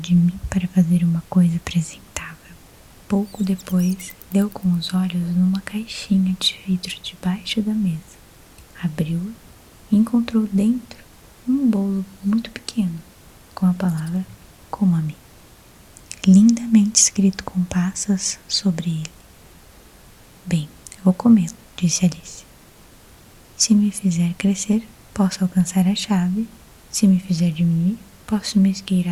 mim para fazer uma coisa apresentável. Pouco depois, deu com os olhos numa caixinha de vidro debaixo da mesa. Abriu-a e encontrou dentro um bolo muito pequeno, com a palavra coma-me, lindamente escrito com passas sobre ele. Bem, eu vou comê-lo, disse Alice. Se me fizer crescer, posso alcançar a chave. Se me fizer diminuir, posso me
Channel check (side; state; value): both; identical; correlation 1.00